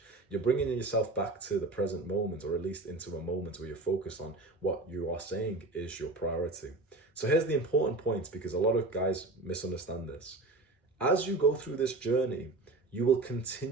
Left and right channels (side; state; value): left; quieter; 3.2 dB